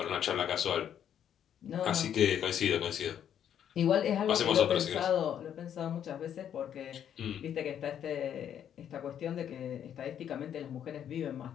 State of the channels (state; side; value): quieter; right; 9.5 dB